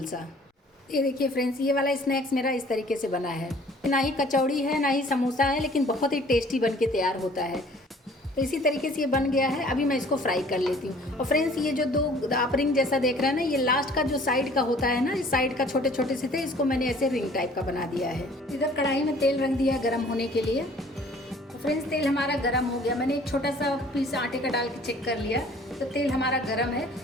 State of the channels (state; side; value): normal; both; correlation 0.53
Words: सा। ये देखिए फ्रेंड्स, ये वाला स्नैक्स मेरा इस तरीके से बना है। ना ही कचौड़ी है ना ही समोसा है, लेकिन बहुत ही टेस्टी बन के तैयार होता है। तो इसी तरीके से ये बन गया है। अभी मैं इसको फ्राई कर लेती हूँ। और फ्रेंड्स, ये जो दो आप रिंग जैसा देख रहे हैं ना, ये लास्ट का जो साइड का होता है ना, इस साइड का छोटे छोटे से थे, इसको मैंने ऐसे रिंग टाइप का बना दिया है। इधर कढ़ाई में तेल रख दिया गर्म होने के लिए। तो फ्रेंड्स, तेल हमारा गर्म हो गया। मैंने एक छोटा सा पीस आटे का डाल के चेक कर लिया, तो तेल हमारा गर्म है।